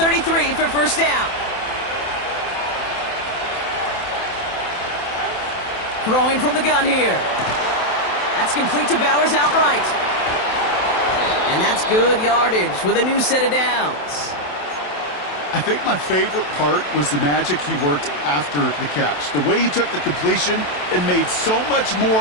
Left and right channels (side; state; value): right; late; 27 ms